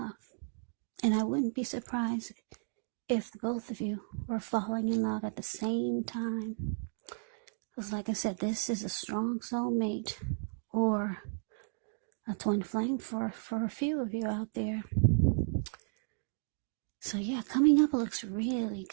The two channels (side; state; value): left; silent; digital silence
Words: And I wouldn't be surprised if both of you were falling in love at the same time. Because like I said, this is a strong soulmate or a twin flame for a few of you out there. So yeah, coming up looks really